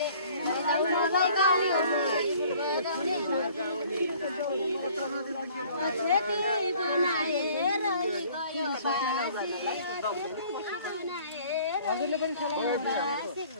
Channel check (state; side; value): inverted; both; correlation -0.54